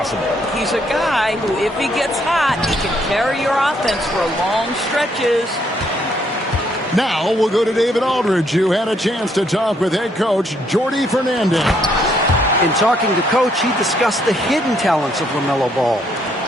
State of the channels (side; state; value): both; normal; correlation 0.71